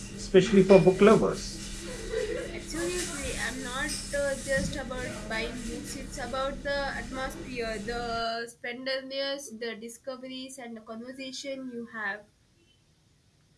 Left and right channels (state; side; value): identical; both; correlation 1.00